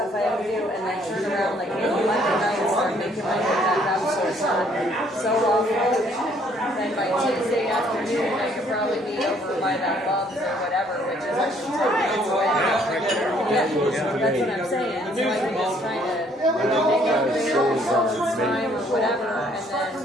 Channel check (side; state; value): both; normal; correlation 0.64